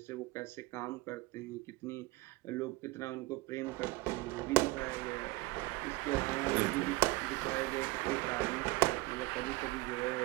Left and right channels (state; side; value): quieter; left; 21.4 dB